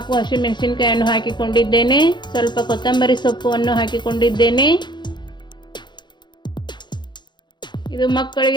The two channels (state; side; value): late; right; 0.22 ms